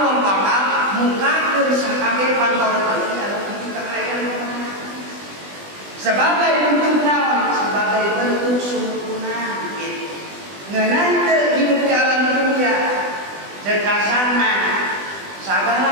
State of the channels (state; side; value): late; left; 20 ms